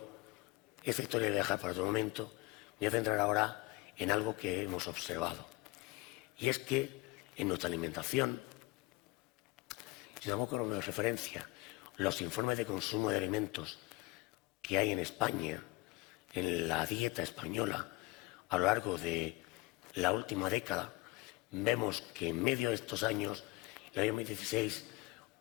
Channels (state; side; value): quieter; right; 21.3 dB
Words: esta historia voy a dejar para otro momento. Me voy a centrar ahora en algo que hemos observado. Y es que en nuestra alimentación, si damos como referencia los informes de consumo de alimentos que hay en España, en la dieta española, a lo largo de la última década, vemos que en medio de estos años, en el año 2016,